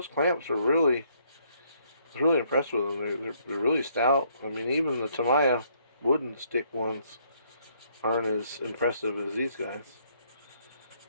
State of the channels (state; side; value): inverted; both; correlation -0.68